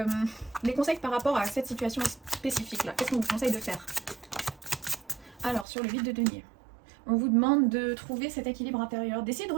les conseils par rapport à cette situation spécifique là. Qu'est-ce qu'on vous conseille de faire? Alors, sur le 8 de denier, on vous demande de trouver cet équilibre intérieur, d'essayer de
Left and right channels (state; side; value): drops out; left; at 5.7 s